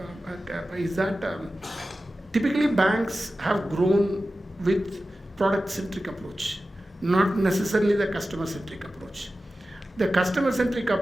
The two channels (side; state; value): both; normal; correlation 0.94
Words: typically banks have grown with product-centric approach, not necessarily the customer-centric approach. The customer-centric